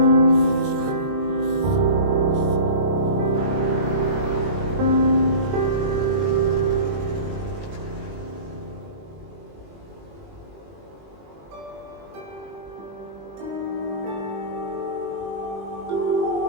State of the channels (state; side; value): late; left; 21 ms